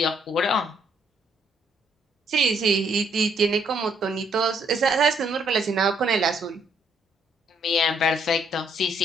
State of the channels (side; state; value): both; normal; correlation 0.70